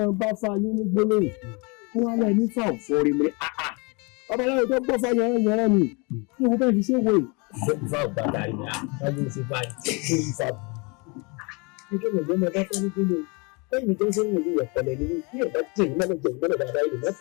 bá fa yín ní gbólóhùn kí wọ́n lọ ní fáwọn fọ́ọ̀rì mi ọbaláwo tó gbọ́ fáyọ̀ yẹn ni kí wọ́n fẹ́ẹ́ fi ṣe wòye. ìfà ògbàdà rẹ̀ ni àtàlù ṣe báyìí ṣé ìfà bù. nítorí ìgbẹ́ mi bá fẹ́ ní kílò lẹ́yìn tó ń sẹ́yìn ìlú ìyẹ̀pẹ̀lẹ̀ nínú bí ẹ̀dá jẹ́ ìmọ̀lẹ̀ jẹ́ ìmọ̀lẹ̀ dáadáa ìlú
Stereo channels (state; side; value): quieter; right; 30.2 dB